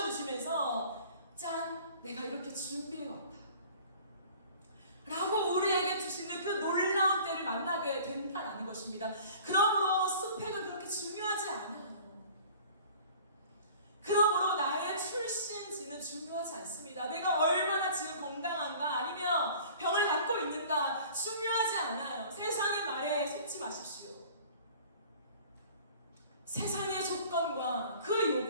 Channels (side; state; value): both; inverted; correlation -0.47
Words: 짠! 내가 이렇게 준비해왔다 라고 우리에게 주시는 그 놀라운 때를 만나게 된다는 것입니다. 그러므로 스펙은 그렇게 중요하지 않아요. 그러므로 나의 출신지는 중요하지 않습니다. 내가 얼마나 지금 건강한가 아니면 병을 갖고 있는가 중요하지 않아요. 세상의 말에 속지 마십시오. 세상의 조건과 그